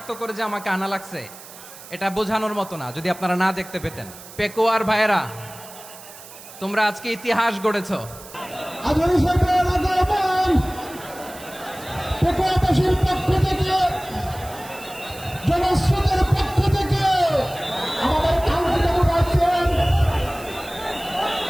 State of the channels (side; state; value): right; noise; hiss, 17 dB below the sound